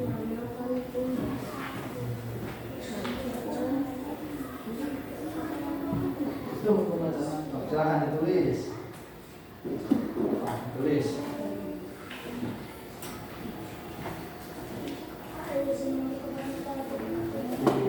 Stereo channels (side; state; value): both; identical; correlation 1.00